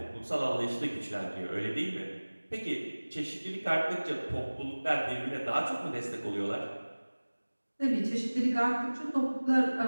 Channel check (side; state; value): both; inverted; correlation -1.00